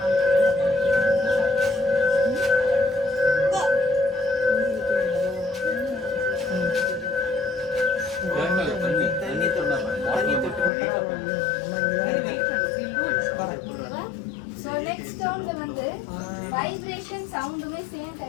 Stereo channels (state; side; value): drops out; right; at 10.7 s